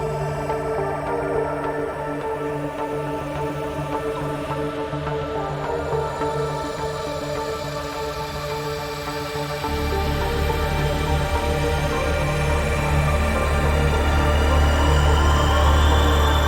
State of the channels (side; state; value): both; identical; correlation 1.00